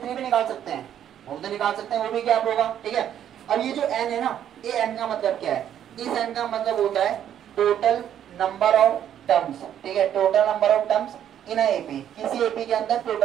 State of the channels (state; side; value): quieter; left; 10.2 dB